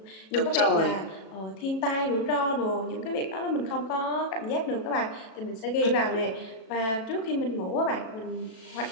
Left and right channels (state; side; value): late; right; 37 ms